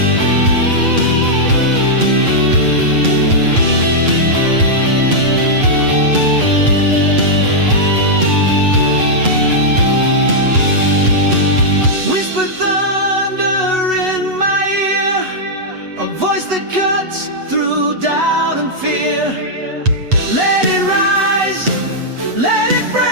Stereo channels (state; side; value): late; left; 8.0 ms